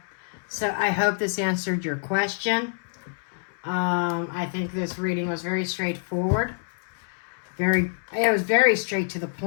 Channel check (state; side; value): silent; right; 61 dB below the other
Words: So I hope this answered your question. I think this reading was very straightforward. It was very straight to the